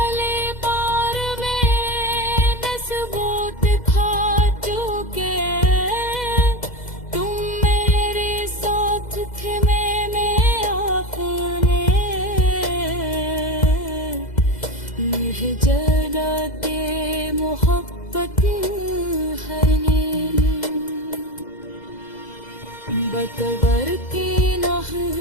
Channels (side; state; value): right; late; 2.0 ms